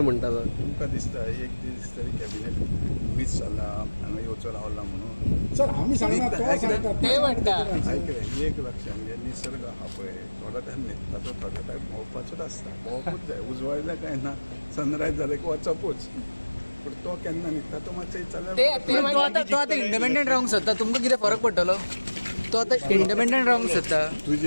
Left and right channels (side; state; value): both; inverted; correlation -1.00